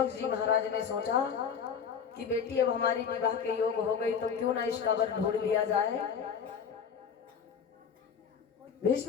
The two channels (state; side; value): quieter; right; 7.0 dB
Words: जी महाराज ने सोचा कि बेटी अब हमारी विवाह के योग हो गई, तो क्यों ना इसका वर ढूंढ लिया जाए।